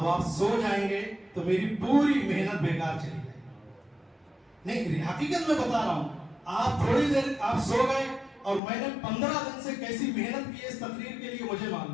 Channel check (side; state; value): right; drops out; at 8.6 s